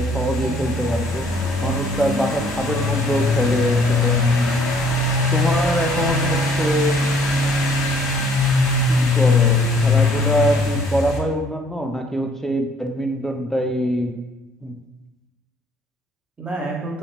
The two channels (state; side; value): normal; both; correlation 0.61